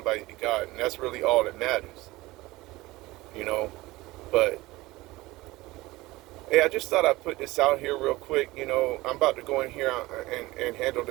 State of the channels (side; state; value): left; quieter; 19.6 dB